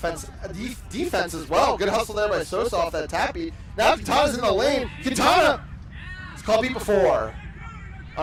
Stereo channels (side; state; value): both; identical; correlation 1.00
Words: defense as well. Good hustle there by Sosa off that tap beat. Now Quintana's in the lane. Quintana is called beat before